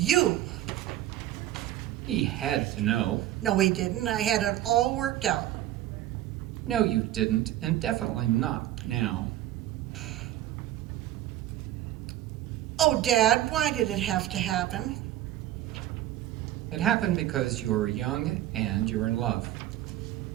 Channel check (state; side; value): quieter; left; 13.8 dB